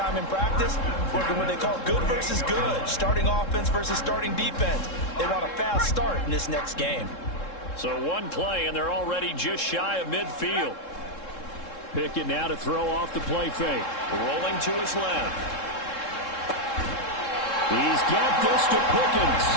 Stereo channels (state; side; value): late; right; 3.7 ms